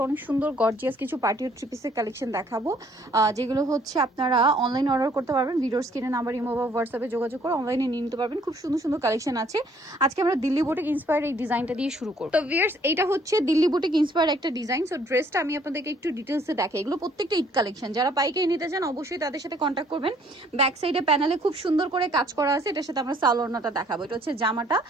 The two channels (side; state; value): both; normal; correlation 0.62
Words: অনেক সুন্দর গর্জিয়াস কিছু পার্টি থ্রি পিসের কালেকশন দেখাবো, যেগুলো হচ্ছে আপনারা অনলাইন অর্ডার করতে পারবেন। ভিডিওর স্ক্রিনে নাম্বার, ইমো বা হোয়াটসঅ্যাপে যোগাযোগ করে অনলাইনে নিয়ে নিতে পারবেন। খুব সুন্দর সুন্দর কালেকশন আছে। আজকে আমরা দিল্লি বুটিক ইন্সপায়ার্ড এই ডিজাইনটা দিয়ে শুরু করব। তো ভিউয়ার্স, এটা হচ্ছে দিল্লি বুটিক ইন্সপায়ার্ড একটা ডিজাইন। সো ড্রেসটা আমি আপনাদেরকে একটু ডিটেলসে দেখাই। এগুলো প্রত্যেকটা ঈদ কালেকশন। যারা পাইকারি নিতে চান অবশ্যই তাদের সাথে কন্ট্যাক্ট করবেন। ব্যাক সাইডে প্যানেলে খুব সুন্দর করে কাজ করা আছে। এটার সাথে আমরা সালোয়ারটা দেখাবো। এটা হচ্ছে জামাটা,